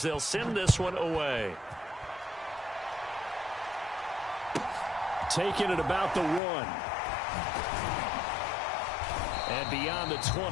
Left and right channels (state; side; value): drops out; right; at 6.4 s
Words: they'll send this one away. Taking it about the 1. And beyond the